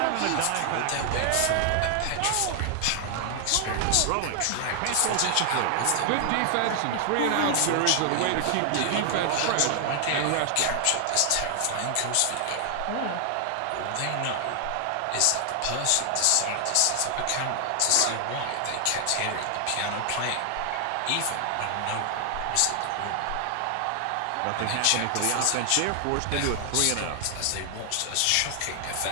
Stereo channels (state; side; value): different; both; correlation 0.00